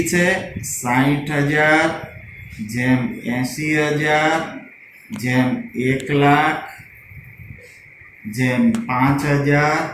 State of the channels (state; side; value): identical; both; correlation 1.00